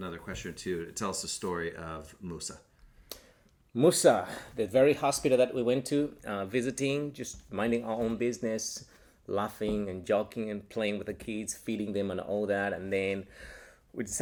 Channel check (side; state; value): both; identical; correlation 1.00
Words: question or two. Tell us the story of Musa. Musa, the very hospital that we went to, visiting, just minding our own business, laughing and joking and playing with the kids, feeding them and all that. And then we